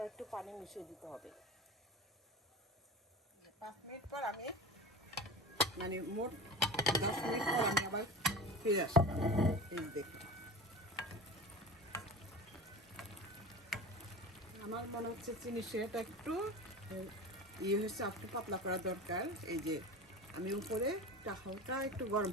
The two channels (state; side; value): normal; both; correlation 0.33